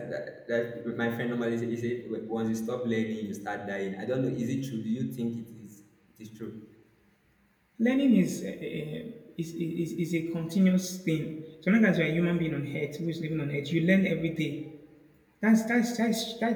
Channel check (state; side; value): identical; both; correlation 1.00